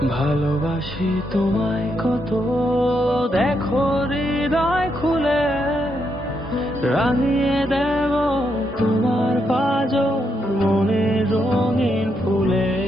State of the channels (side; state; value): both; normal; correlation 0.80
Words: ভালোবাসি তোমায় কত, দেখো হৃদয় খুলে রাঙিয়ে দেব তোমার পাঁজর মনের রঙিন ফুলে।